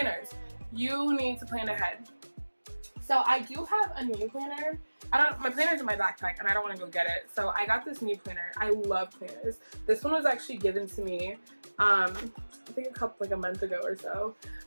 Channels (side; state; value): both; inverted; correlation -1.00